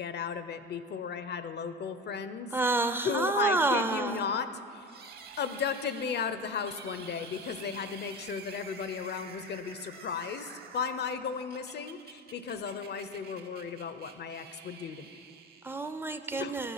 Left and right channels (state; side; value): normal; both; correlation 0.27